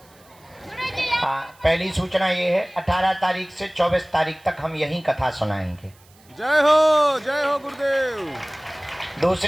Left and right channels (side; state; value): right; noise; hiss, 29 dB below the sound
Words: पहली सूचना ये है, 18 तारीख से 24 तारीख तक हम यही कथा सुनाएंगे। जय हो गुरुदेव।